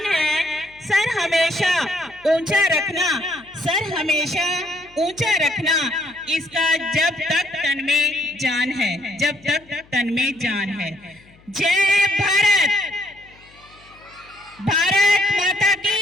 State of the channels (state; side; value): noise; left; hum, 28 dB below the sound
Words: है। सर हमेशा ऊंचा रखना, सर हमेशा ऊंचा रखना, इसका जब तक तन में जान है, जब तक तन में जान है। जय भारत, भारत माता